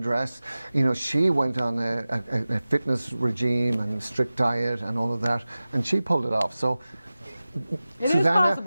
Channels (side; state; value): both; inverted; correlation -0.97